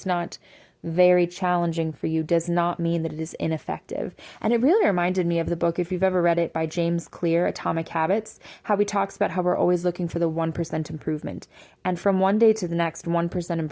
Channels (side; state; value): both; identical; correlation 1.00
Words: not very challenging for you, does not mean that it is ineffective. And it really reminded me of the book, if you've ever read it, by James Clear, Atomic Habits, how he talks about how we're always looking for the 1% improvement. And from one day to the next, 1%